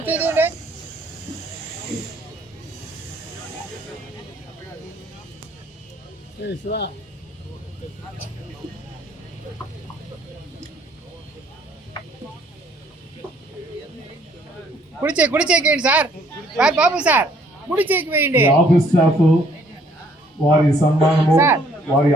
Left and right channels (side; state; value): both; normal; correlation 0.63